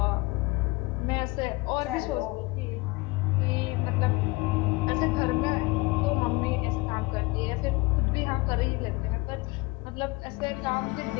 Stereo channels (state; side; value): quieter; right; 23.4 dB